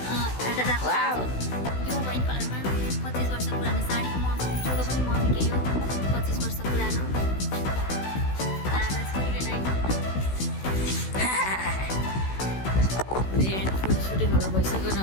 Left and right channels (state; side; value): late; right; 16 ms